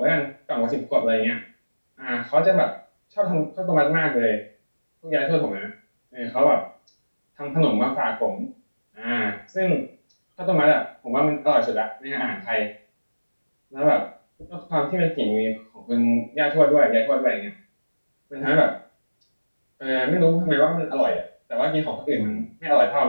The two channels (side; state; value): both; inverted; correlation -1.00